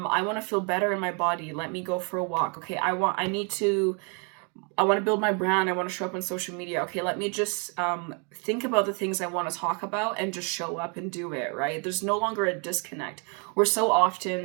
want to feel better in my body. Let me go for a walk. Okay, I want to build my brand. I want to show up on social media. Okay, let me just think about the things I want to talk about and just show up and do it, right? There's no longer a disconnect. We're so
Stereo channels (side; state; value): left; quieter; 36.5 dB